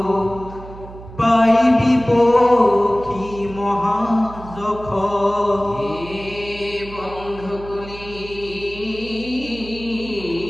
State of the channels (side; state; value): right; noise; hum, 15 dB below the sound